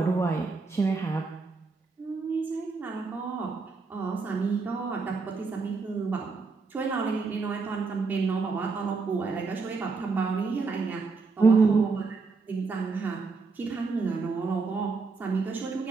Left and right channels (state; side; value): quieter; left; 4.4 dB